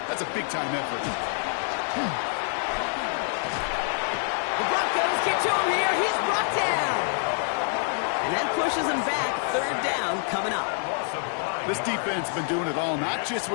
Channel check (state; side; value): silent; right; 60 dB below the other